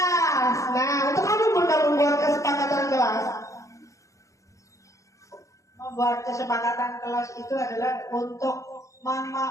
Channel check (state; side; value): late; right; 0.15 ms